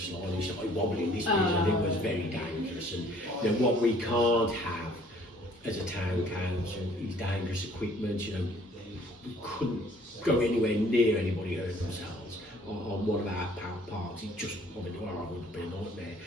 and he started wobbling this bit, and it was very dangerous. And what we can't have as a town council is dangerous equipment. We couldn't go anywhere near anybody hurt themselves on one of our parks. It just would have been a nightmare.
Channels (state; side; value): normal; both; correlation 0.57